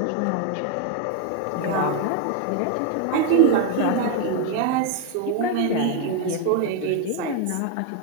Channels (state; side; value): different; both; correlation 0.01